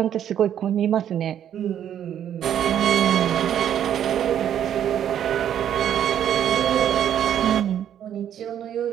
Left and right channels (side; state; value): left; quieter; 10.0 dB